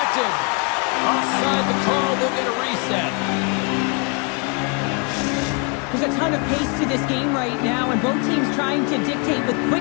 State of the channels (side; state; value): right; quieter; 33.4 dB